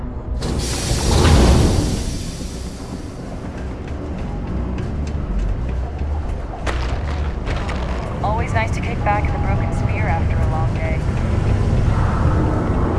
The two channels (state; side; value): identical; both; correlation 1.00